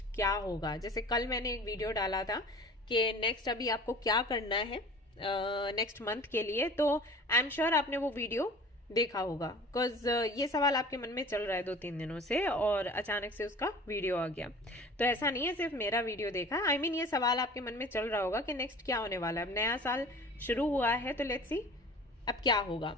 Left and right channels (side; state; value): both; normal; correlation 0.43